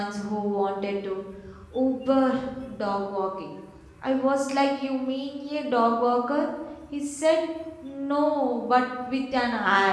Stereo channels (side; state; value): both; identical; correlation 1.00